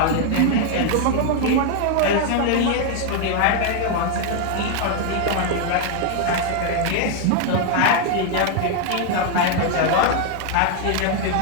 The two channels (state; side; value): different; both; correlation 0.00